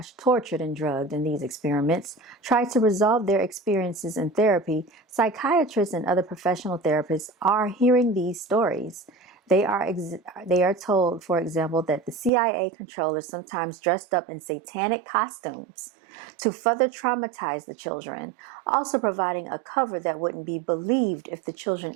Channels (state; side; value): drops out; left; at 12.3 s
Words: tortured, and drugged in these experiments tried to resolve their experiences in therapy, psychiatrists and other professional therapists are hearing these stories. They are told, for example, that the CIA controllers sometimes dressed up in satanic costumes to further traumatize the children, also providing a cover that wouldn't be believed if the children